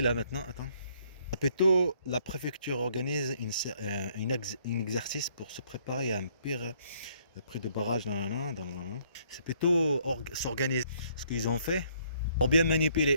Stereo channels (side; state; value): both; inverted; correlation -0.65